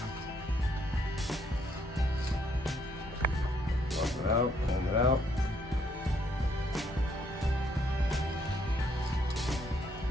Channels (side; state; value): both; normal; correlation 0.70